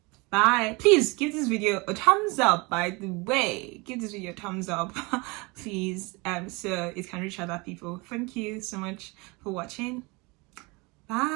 Bye. Please give this video a thumbs up, by the way. Give this video a thumbs up, please, so it can reach other people. Thank you so much for watching.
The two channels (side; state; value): left; quieter; 26.8 dB